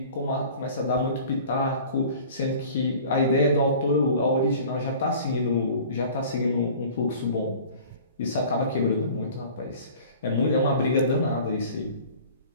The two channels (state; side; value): inverted; both; correlation -0.45